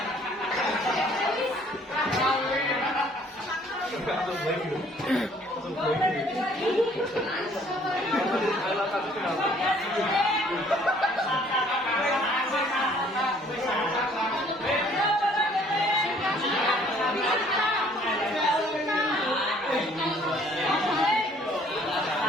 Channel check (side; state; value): both; normal; correlation 0.59